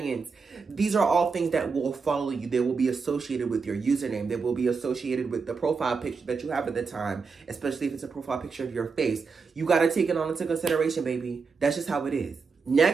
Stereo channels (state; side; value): quieter; left; 5.0 dB